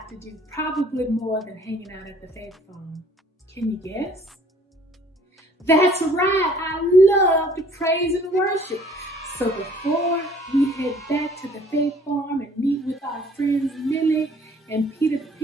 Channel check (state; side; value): normal; both; correlation 0.56